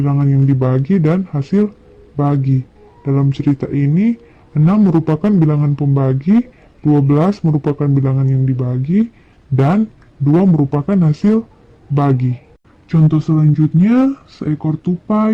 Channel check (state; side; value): identical; both; correlation 1.00